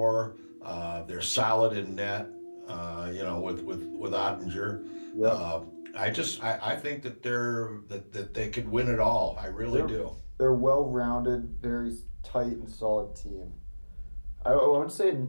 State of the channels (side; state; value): both; inverted; correlation -1.00